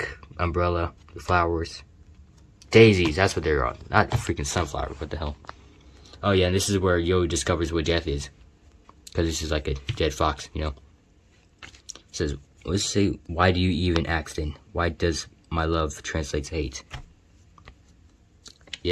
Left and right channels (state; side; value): identical; both; correlation 1.00